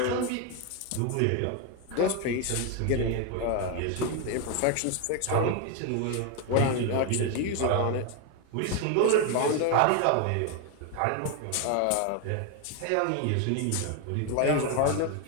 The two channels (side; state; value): both; different; correlation 0.01